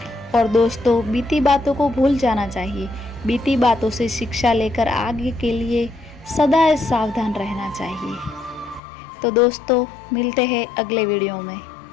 और दोस्तों, बीती बातों को भूल जाना चाहिए। बीती बातों से शिक्षा लेकर आगे के लिए सदा सावधान रहना चाहिए। तो दोस्तों, मिलते हैं अगले वीडियो में।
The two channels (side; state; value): right; drops out; at 8.8 s